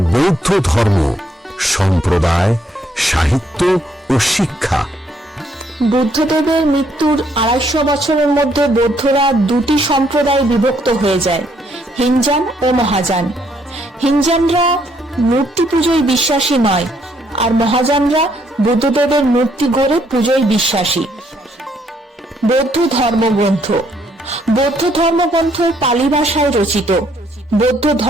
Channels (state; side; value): normal; both; correlation 0.70